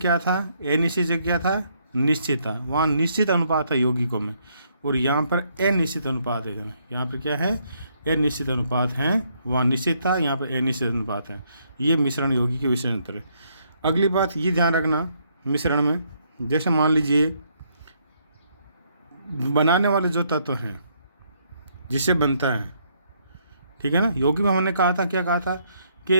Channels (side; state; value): both; inverted; correlation -0.71